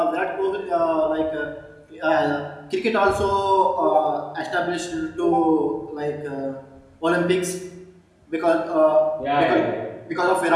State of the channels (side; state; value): both; identical; correlation 1.00